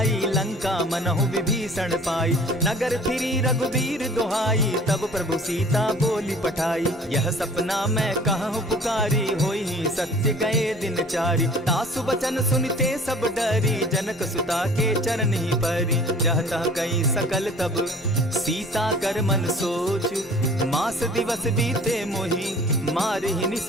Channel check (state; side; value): normal; both; correlation 0.48